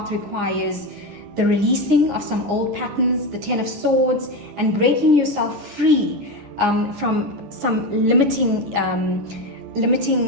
requires the releasing of some old patterns, the Ten of Swords, and breaking yourself free from some limiting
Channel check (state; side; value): late; left; 10 ms